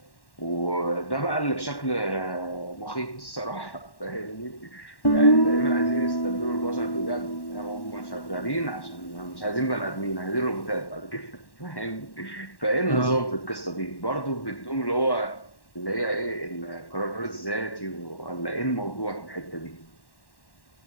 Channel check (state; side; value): late; right; 1.1 ms